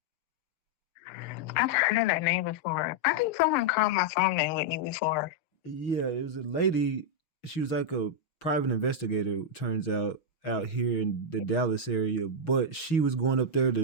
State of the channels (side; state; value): right; late; 6.2 ms